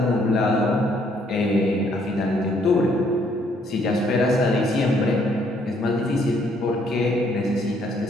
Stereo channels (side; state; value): both; normal; correlation 0.67